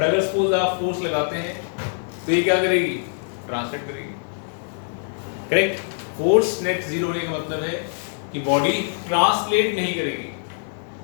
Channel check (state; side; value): silent; right; 63 dB below the other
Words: अगर सपोज आप फोर्स लगाते हैं तो ये क्या करेगी? ट्रांसलेट करेगी। करेक्ट। फोर्स नेट जीरो होने का मतलब है कि बॉडी ट्रांसलेट नहीं करेगी,